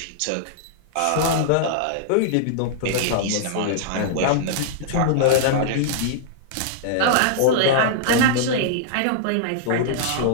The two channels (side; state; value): both; different; correlation -0.02